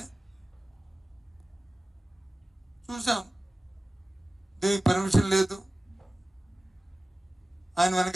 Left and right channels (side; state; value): both; normal; correlation 0.97